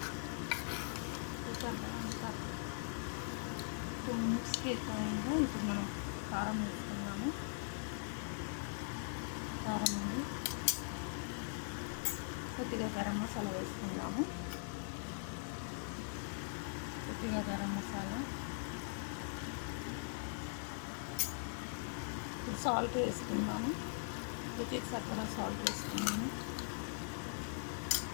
2 minutesకి ఎక్కువైందో ఇప్పుడు మనం కారం వేసుకున్నాము. కారం అండి. కొద్దిగా గరం మసాలా వేసుకుందాము. కొద్దిగా గరం మసాలా, ఇప్పుడు సాల్ట్ వేసుకుందాము. రుచికి సరిపడా సాల్ట్ వేసుకున్నాము.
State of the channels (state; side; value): silent; right; 50 dB below the other